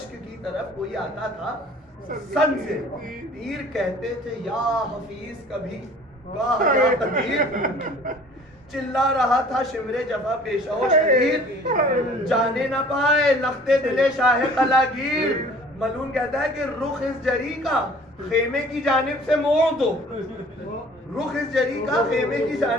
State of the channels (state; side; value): normal; both; correlation 0.50